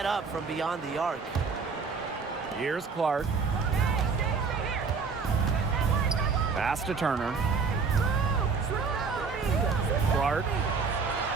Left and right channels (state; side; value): quieter; left; 5.0 dB